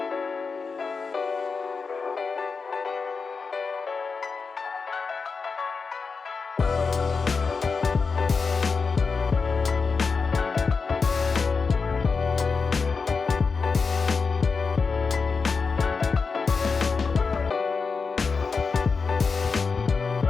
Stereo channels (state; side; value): quieter; right; 4.9 dB